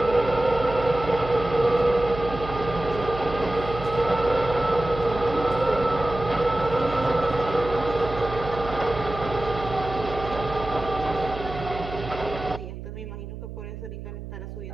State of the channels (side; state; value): right; noise; hum, 10 dB below the sound